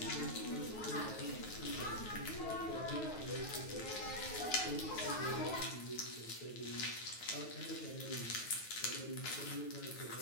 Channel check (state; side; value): late; right; 9.4 ms